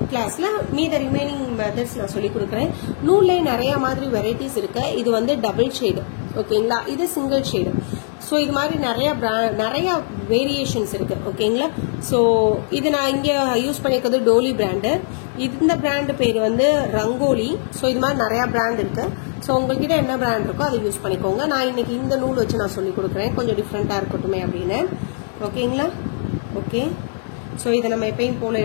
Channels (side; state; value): right; silent; digital silence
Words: கிளாஸ்ல மீத ரிமைனிங் மெத்தட்ஸ் நான் சொல்லி கொடுக்குறேன். நூல்ல நிறைய மாதிரி வெரைட்டிஸ் இருக்கு. இது வந்து டபுள் ஷேடு. ஓகேங்களா? இது சிங்கிள் ஷேடு. ஸோ இது மாதிரி நிறைய வேரியேஷன்ஸ் இருக்கு. ஓகேங்களா? ஸோ இது நான் இங்க யூஸ் பண்ணிருக்கிறது டோலி பிராண்டு. இந்த பிராண்டு பேர் வந்து ரங்கோலி. ஸோ இது மாதிரி நிறைய பிராண்ட் இருக்கு. ஸோ உங்ககிட்ட என்ன பிராண்ட் இருக்கோ அதை யூஸ் பண்ணிக்கோங்க. நான் இன்னைக்கு இந்த நூல் வச்சு நான் சொல்லி கொடுக்குறேன், கொஞ்சம் டிஃப்ரெண்டா இருக்கட்டுமே அப்படின்னு. ஓகேங்களா? ஓகே. ஸோ இதை நம்ம எப்பயும் போல